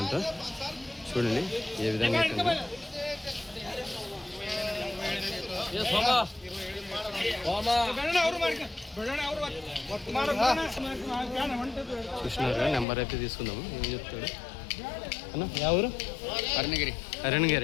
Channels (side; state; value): right; drops out; at 12.9 s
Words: అంట. చూడండి ఏ విధంగా అయితే చూసినారు. నెంబర్ అయితే తీసుకుందాము. ఏం చెప్తాడు అన్న? యా ఊరు?